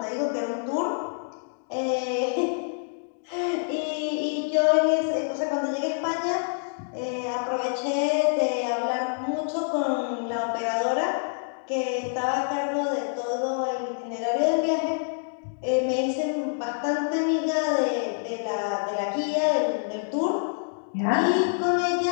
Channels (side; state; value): right; silent; digital silence